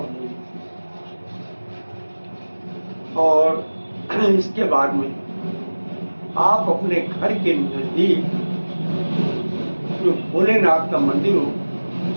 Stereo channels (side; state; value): both; inverted; correlation -1.00